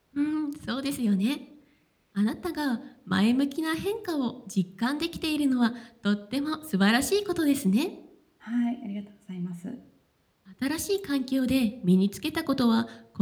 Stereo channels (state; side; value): identical; both; correlation 1.00